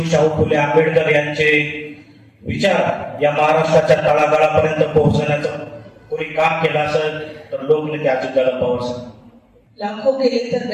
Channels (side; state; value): both; identical; correlation 1.00